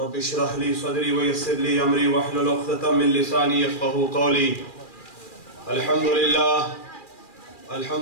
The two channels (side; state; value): right; late; 2.4 ms